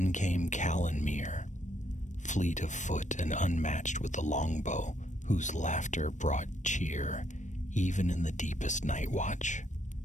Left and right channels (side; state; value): right; late; 0.35 ms